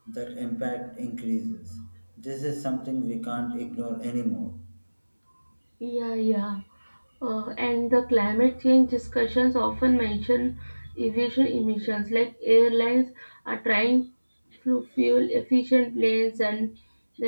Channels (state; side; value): inverted; both; correlation -1.00